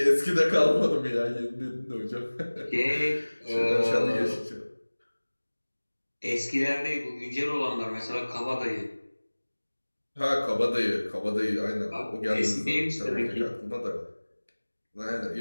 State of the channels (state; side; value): inverted; both; correlation -1.00